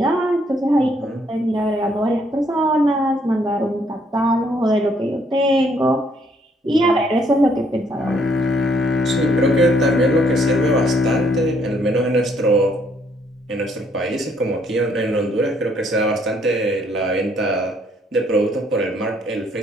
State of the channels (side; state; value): both; normal; correlation 0.68